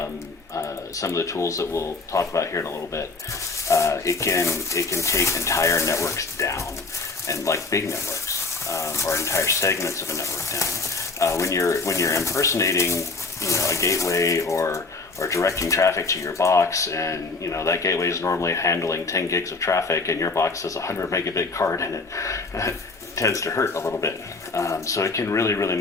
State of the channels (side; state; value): right; quieter; 3.8 dB